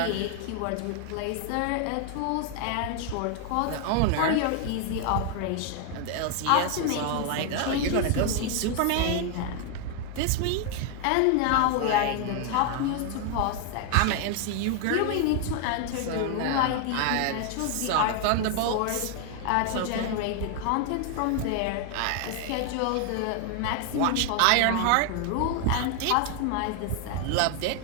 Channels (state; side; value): different; both; correlation 0.00